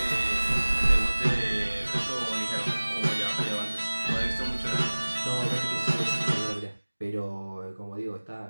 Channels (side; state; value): both; inverted; correlation -1.00